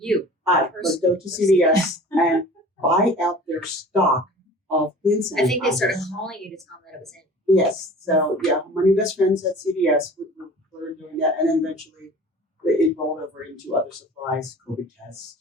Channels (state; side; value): normal; both; correlation 0.43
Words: I would go to CVS and buy out their stock of hand sanitizer. I think they started calling you to tell them that it was in. Yes. So yeah, my new best friends at CVS were doing that, and then eventually it rolled over into other supplies, COVID tests,